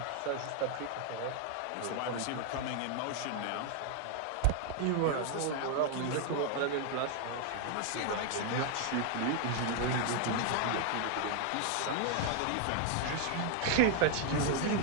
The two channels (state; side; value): different; both; correlation 0.00